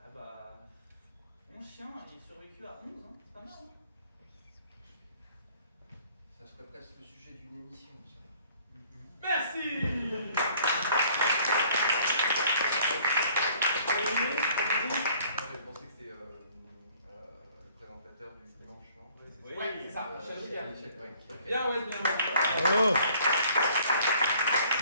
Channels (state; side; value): inverted; both; correlation -0.58